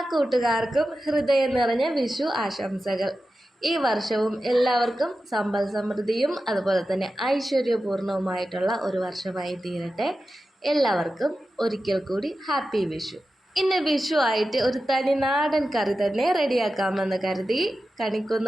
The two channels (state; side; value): normal; both; correlation 0.92